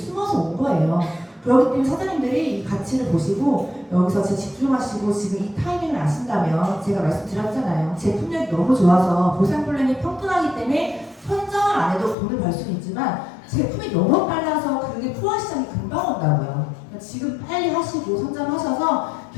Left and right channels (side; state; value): right; drops out; at 12.2 s